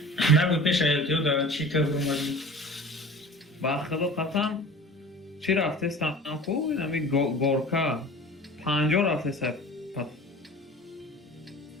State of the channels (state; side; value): normal; both; correlation 0.41